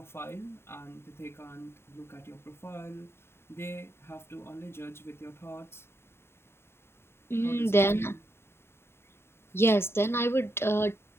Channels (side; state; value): right; late; 0.12 ms